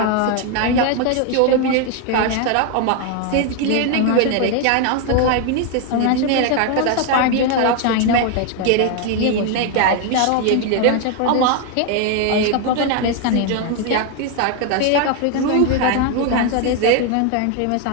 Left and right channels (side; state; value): both; different; correlation 0.01